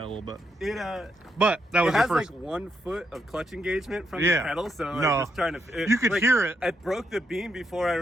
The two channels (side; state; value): both; normal; correlation 0.79